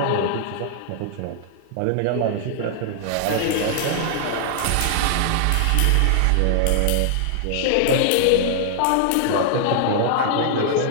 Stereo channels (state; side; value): different; both; correlation -0.01